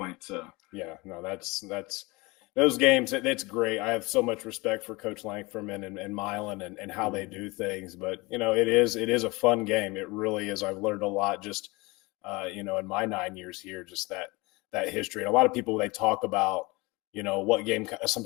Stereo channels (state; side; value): quieter; right; 24.3 dB